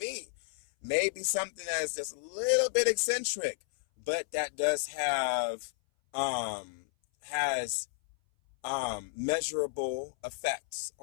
Maybe something that's just a little bit eccentric, but that does have, measurable effects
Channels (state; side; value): silent; right; 56 dB below the other